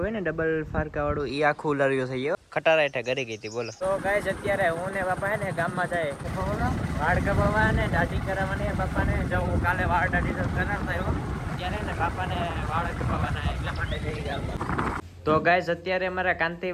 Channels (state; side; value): identical; both; correlation 1.00